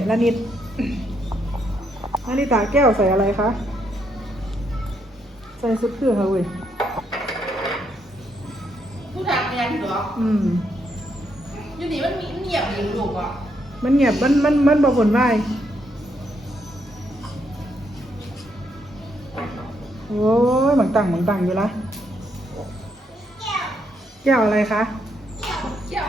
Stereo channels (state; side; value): normal; both; correlation 0.76